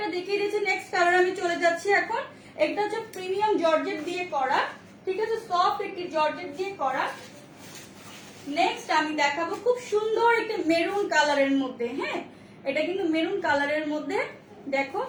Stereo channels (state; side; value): identical; both; correlation 1.00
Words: দেখিয়ে দিয়েছি। নেক্সট কালার আমি চলে যাচ্ছি এখন। এটা হচ্ছে প্রিমিয়াম জর্জেট দিয়ে করা। ঠিক আছে, সফট একটি জর্জেট দিয়ে করা। নেক্সট আমি দেখাবো খুব সুন্দর একটা মেরুন কালারের মধ্যে। হ্যাঁ, এটা কিন্তু মেরুন কালারের মধ্যে। দেখো